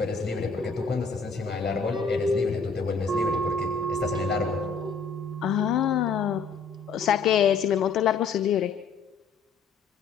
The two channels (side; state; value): right; quieter; 5.1 dB